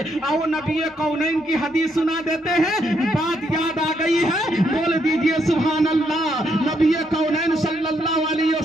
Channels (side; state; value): both; normal; correlation 0.75